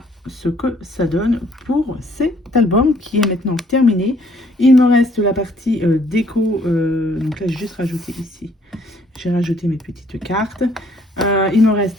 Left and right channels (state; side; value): normal; both; correlation 0.63